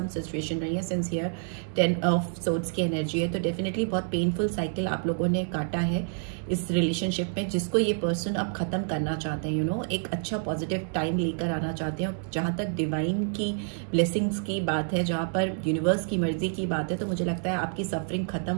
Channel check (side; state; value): left; silent; 59 dB below the other